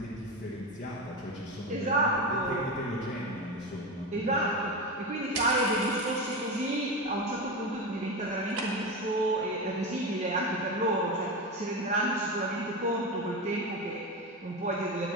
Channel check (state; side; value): normal; both; correlation 0.19